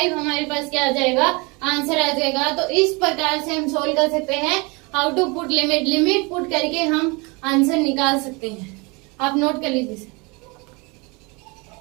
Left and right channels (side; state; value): left; quieter; 28.1 dB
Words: हमारे पास क्या आ जाएगा, आंसर आ जाएगा। तो इस प्रकार से हम सोल्व कर सकते हैं how to put limit. Limit put करके हम आंसर निकाल सकते हैं। आप नोट कर लीजिए।